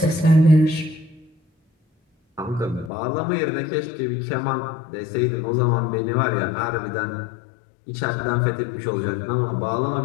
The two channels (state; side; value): drops out; right; at 2.9 s